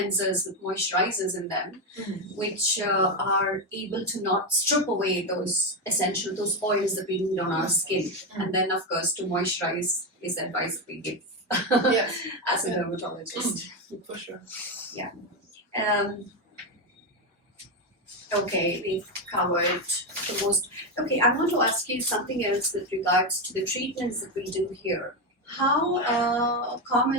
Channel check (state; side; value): normal; both; correlation 0.10